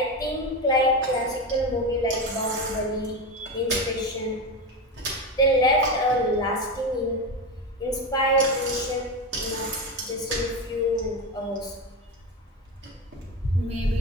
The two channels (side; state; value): both; normal; correlation 0.18